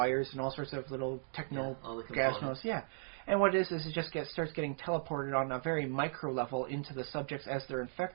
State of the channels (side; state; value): left; silent; digital silence